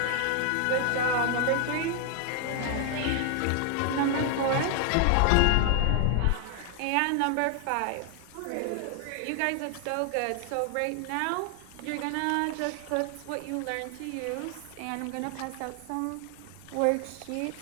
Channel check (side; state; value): both; different; correlation 0.00